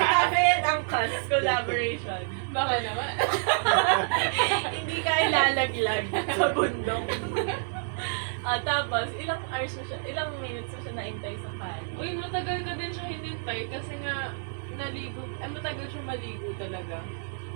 and Angkas collaboration. Baka naman. Hindi kailangan naglalaglag sa bundok. Tapos, ilang minutes na siya naintay sa kali. Uy, matagal ka din siya hinintay kasi nga naligo. Matagal siya maligo talaga.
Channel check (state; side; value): silent; left; digital silence